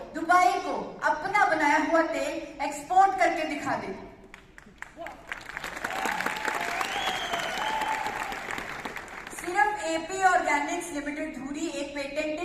दुबई को अपना बनाया हुआ तेल एक्सपोर्ट करके दिखा दे। सिर्फ AP ऑर्गेनिक्स लिमिटेड धुरी एक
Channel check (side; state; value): both; identical; correlation 1.00